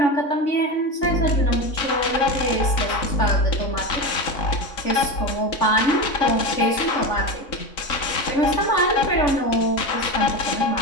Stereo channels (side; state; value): right; late; 3.9 ms